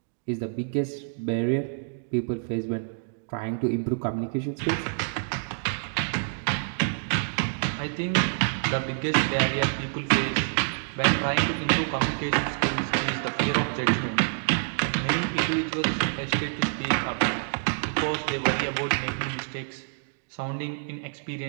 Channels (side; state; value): left; silent; digital silence